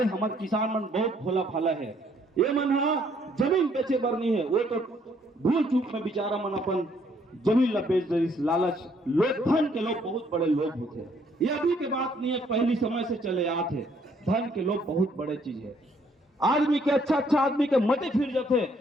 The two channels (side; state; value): both; normal; correlation 0.66